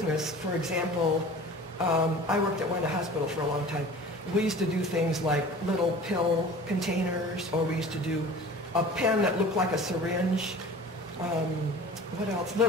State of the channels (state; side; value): normal; both; correlation 0.41